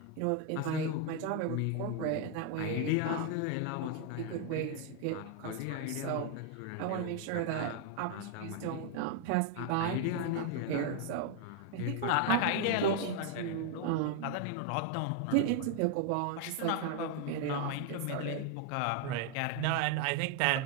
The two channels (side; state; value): both; different; correlation 0.00